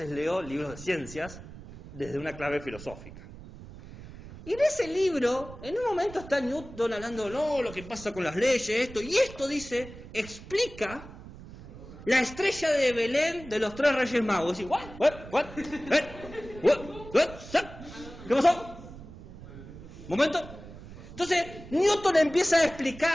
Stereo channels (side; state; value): right; noise; rumble, 16 dB below the sound